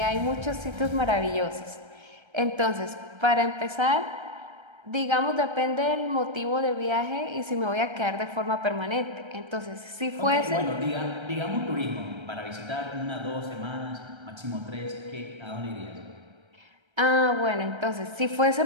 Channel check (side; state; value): left; late; 1.3 ms